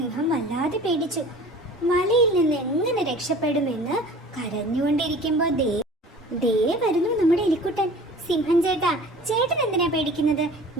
വല്ലാതെ പേടിച്ചു. വലയിൽ നിന്ന് എങ്ങനെ രക്ഷപ്പെടുമെന്ന് കരഞ്ഞുകൊണ്ടിരിക്കുമ്പോ ദേ വരുന്നു നമ്മുടെ എലിക്കുട്ടൻ. സിംഹം ചേട്ടൻ എന്തിനാ പേടിക്കുന്നത്?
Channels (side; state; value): both; normal; correlation 0.44